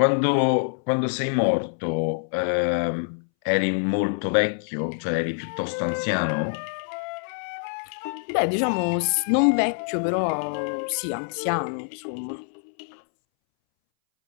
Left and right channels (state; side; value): silent; right; 62 dB below the other